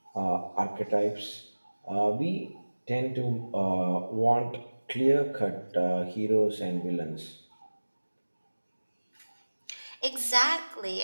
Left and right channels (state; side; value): inverted; both; correlation -1.00